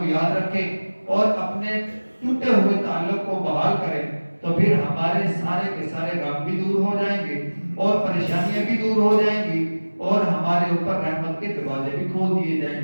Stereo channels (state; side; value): inverted; both; correlation -1.00